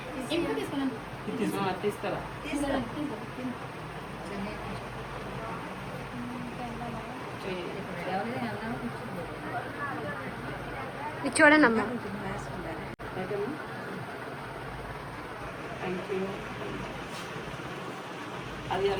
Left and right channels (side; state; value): both; identical; correlation 1.00